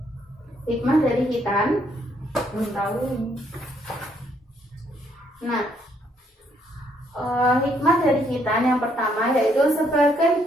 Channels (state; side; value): normal; both; correlation 0.70